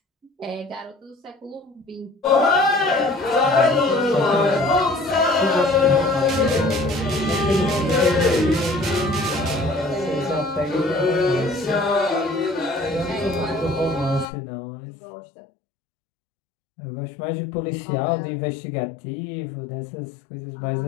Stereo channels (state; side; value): drops out; right; at 14.2 s